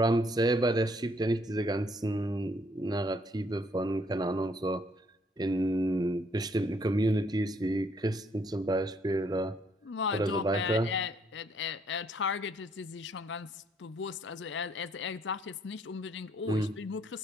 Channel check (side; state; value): both; normal; correlation 0.68